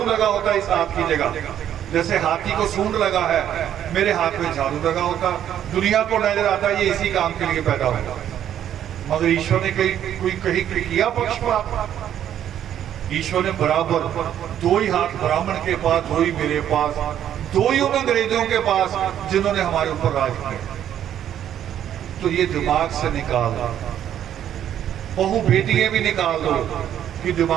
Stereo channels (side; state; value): left; quieter; 10.4 dB